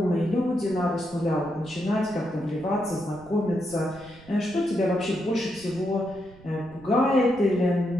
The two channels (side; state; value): right; noise; rumble, 22 dB below the sound